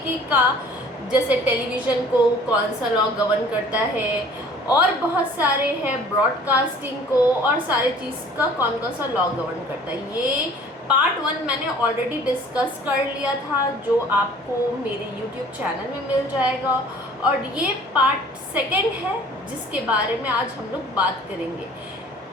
का, जैसे टेलीविज़न को कौन सा लॉ गवर्न करता है, और बहुत सारे हैं ब्रॉडकास्टिंग को, और सारी चीज़ का कौन कौन सा लॉ गवर्न करता है। ये पार्ट 1 मैंने ऑलरेडी डिस्कस कर लिया था, जो आपको मेरे यूट्यूब चैनल में मिल जाएगा, और ये पार्ट 2 है जिसके बारे में आज हम लोग बात करेंगे।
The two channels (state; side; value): normal; both; correlation 0.50